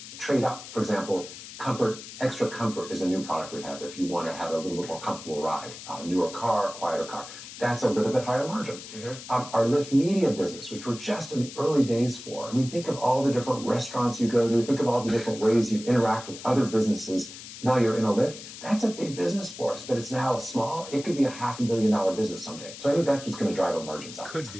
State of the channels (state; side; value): noise; left; hiss, 13 dB below the sound